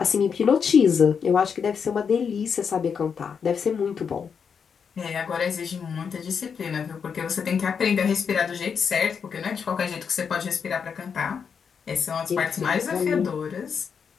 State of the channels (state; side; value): quieter; right; 6.6 dB